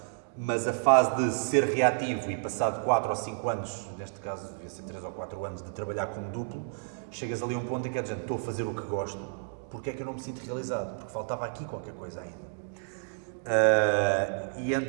mas a fase de ser reativo e passado 4 ou 5 anos, neste caso devia ser 3 ou 4 anos, de trabalhar como duplo, chegas ali a um ponto em que é de gente, estou a fazer o que gosto, porque é que eu não me sinto realizado? Porque faltava aqui qualquer coisa ainda. E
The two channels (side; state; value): left; silent; digital silence